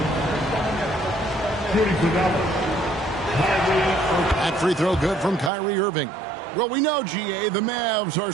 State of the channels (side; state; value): left; drops out; at 5.5 s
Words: That free throw good from Kyrie Irving. Well, we know, GA, the Mavs are